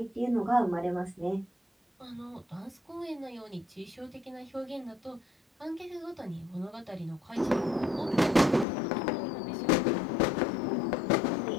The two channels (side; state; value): right; drops out; at 8.7 s